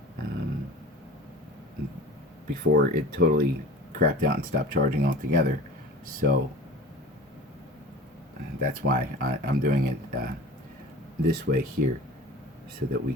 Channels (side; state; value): both; normal; correlation 0.38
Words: before it totally crapped out and stopped charging altogether. So that's why I'm doing it this way here, so that we